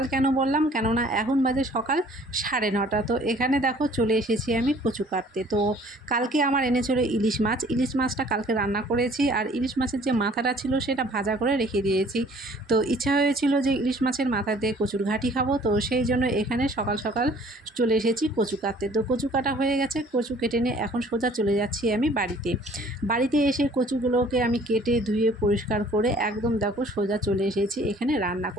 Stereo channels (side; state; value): both; normal; correlation 0.55